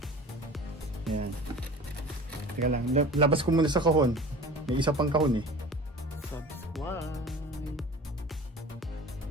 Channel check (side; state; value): both; normal; correlation 0.40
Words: Ayan. Teka lang. Labas ko muna sa kahon. May isa pang kahon eh. Subscribe.